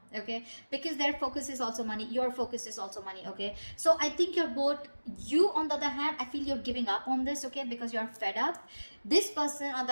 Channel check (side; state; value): both; inverted; correlation -1.00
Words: okay? Because their focus is also money. Your focus is also money, okay? So I think you're both, you on the other hand, I feel you're giving up on this, okay? Because you're fed up. This person on the